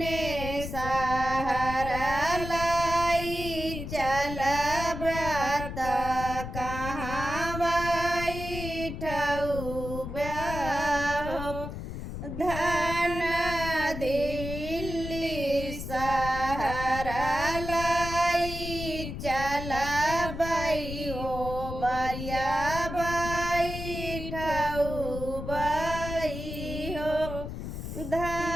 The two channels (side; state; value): left; noise; rumble, 7 dB below the sound